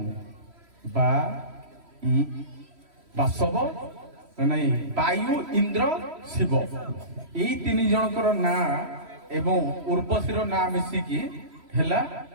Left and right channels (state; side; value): late; left; 3.1 ms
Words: ବାସବ, ନାଇଁ ବାୟୁ, ଇନ୍ଦ୍ର, ଶିବ, ଏଇ 3 ଜଣଙ୍କର ନାଁ ଏବଂ ଉର୍ବଶୀର ନାଁ ମିଶିକି ହେଲା